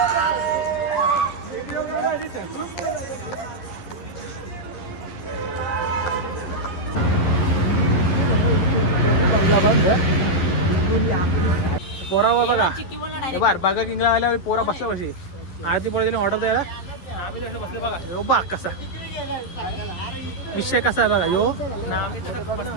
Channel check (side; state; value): right; late; 11 ms